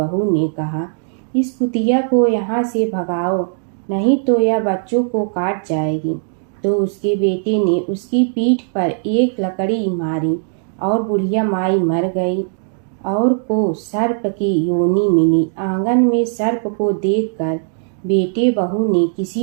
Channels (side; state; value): left; silent; digital silence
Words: ने कहा, इस कुतिया को यहाँ से भगाओ, नहीं तो यह बच्चों को काट जाएगी। तो उसके बेटे ने उसकी पीठ पर एक लकड़ी मारी और बुढ़िया माई मर गई और को सर्प की योनि मिली। आंगन में सर्प को देखकर बेटे बहू ने